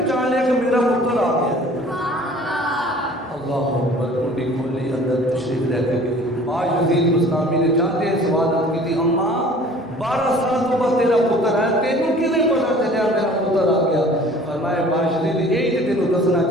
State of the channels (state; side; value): normal; both; correlation 0.49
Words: کہ میرا پتر آ گیا۔ اللہ اکبر، کنڈی کھولی، اندر تشریف لے کے گئی۔ باشدید بستامی نے جاتے سوال کی تھی، اماں 12 سال تو بعد تیرا پتر ہے، تینوں کیویں پتا چلیا میرا پتر آ گیا؟ فرمایا باشدید یہی تے تینوں دسنا